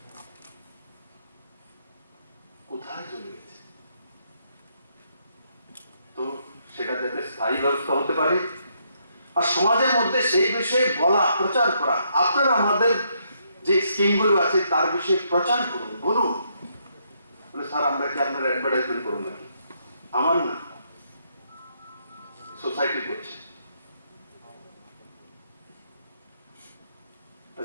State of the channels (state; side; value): inverted; both; correlation -0.75